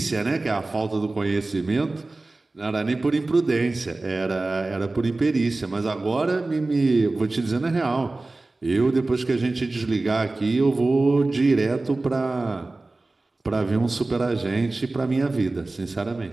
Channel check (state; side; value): quieter; left; 3.1 dB